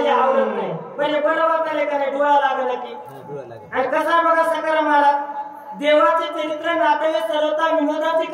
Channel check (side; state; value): both; identical; correlation 1.00